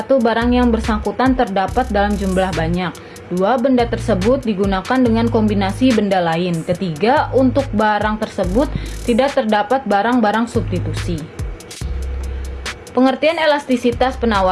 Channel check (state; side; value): identical; both; correlation 1.00